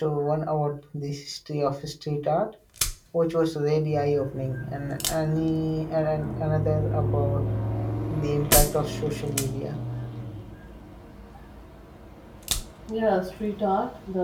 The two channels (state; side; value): identical; both; correlation 1.00